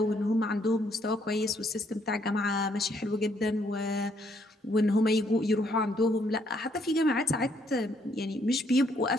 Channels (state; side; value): normal; both; correlation 0.70